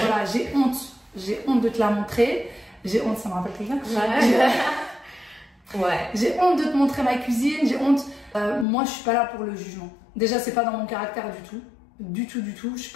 j'ai honte de te la montrer. J'ai honte, ça me rappelle quelqu'un. Ouais. J'ai honte de te montrer ma cuisine, j'ai honte. Moi, je suis pas là pour le jugement. Déjà, c'est pas dans mon caractère du tout. Du tout. Je suis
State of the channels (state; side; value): drops out; right; at 8.7 s